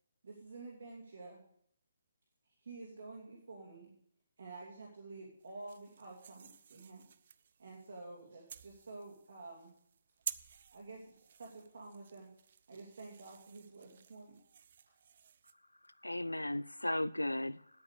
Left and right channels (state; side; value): inverted; both; correlation -0.92